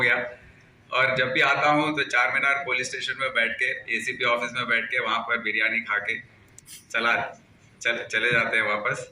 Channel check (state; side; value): identical; both; correlation 1.00